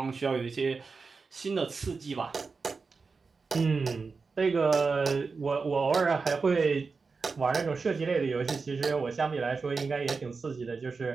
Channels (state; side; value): quieter; left; 4.6 dB